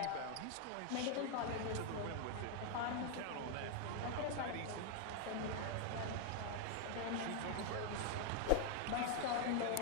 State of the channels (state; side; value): different; both; correlation 0.01